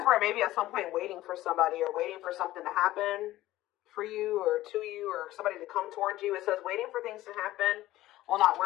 were maybe at some point waiting for somebody or waiting for something to happen for you or to you or somebody to come towards you. It says waiting for things to happen will not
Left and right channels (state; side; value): quieter; right; 15.7 dB